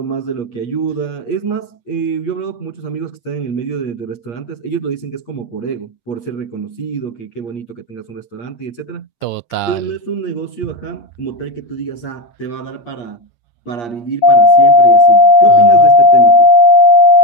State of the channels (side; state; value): right; late; 8.5 ms